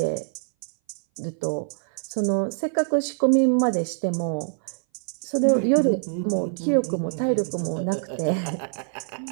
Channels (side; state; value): left; silent; 59 dB below the other